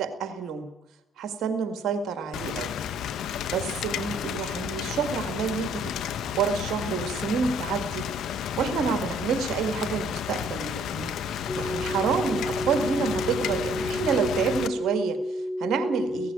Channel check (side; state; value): both; normal; correlation 0.62